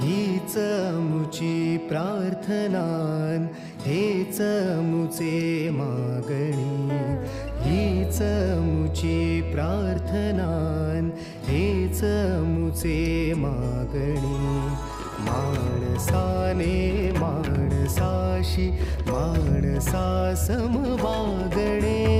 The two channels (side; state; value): both; identical; correlation 1.00